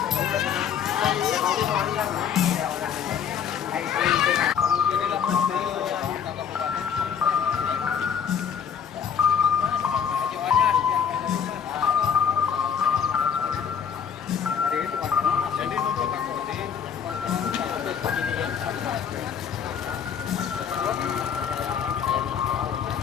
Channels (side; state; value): right; quieter; 7.7 dB